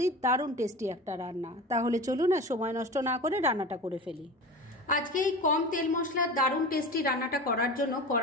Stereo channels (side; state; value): both; normal; correlation 0.32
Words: দারুণ টেস্টি একটা রান্না। তাহলে চলুন আর সময় নষ্ট না করে রান্নাটা করে ফেলি। আজকে এই কম তেল মশলার দারুণ টেস্টি রান্নাটা করার জন্য